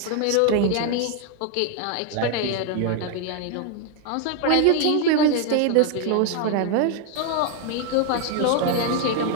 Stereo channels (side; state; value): both; different; correlation 0.01